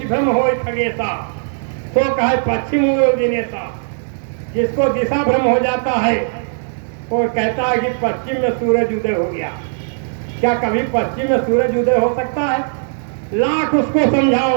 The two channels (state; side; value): silent; left; digital silence